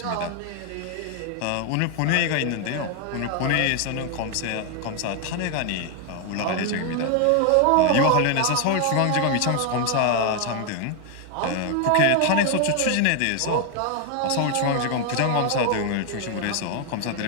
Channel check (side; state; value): both; different; correlation 0.01